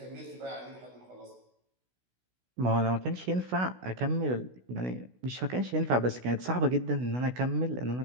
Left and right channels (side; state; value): left; late; 16 ms